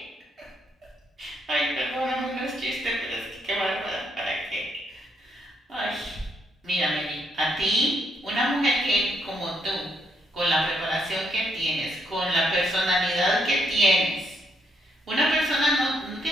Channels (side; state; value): both; normal; correlation 0.75